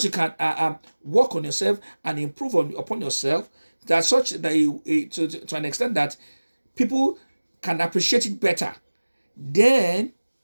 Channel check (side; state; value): both; inverted; correlation -1.00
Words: you can work on yourself and improve upon yourself, that such that to an extent that people can appreciate it better, then